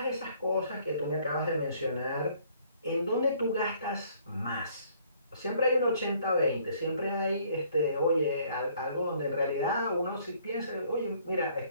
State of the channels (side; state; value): both; inverted; correlation -0.62